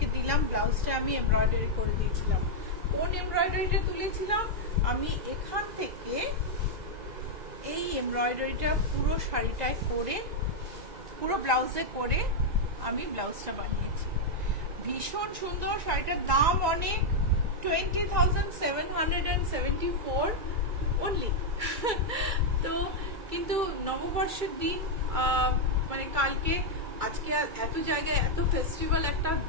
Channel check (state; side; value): late; left; 2.3 ms